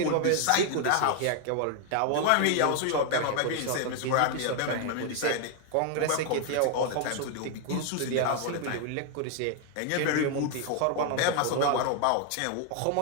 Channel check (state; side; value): different; both; correlation 0.00